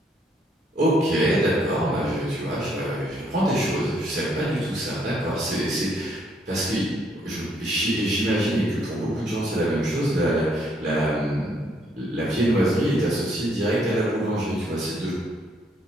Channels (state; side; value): normal; both; correlation 0.70